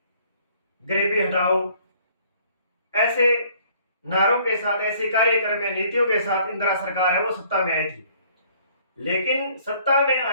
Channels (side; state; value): both; inverted; correlation -0.59